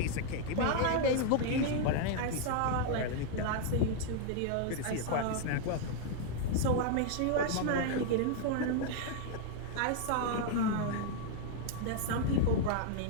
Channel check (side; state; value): both; different; correlation 0.00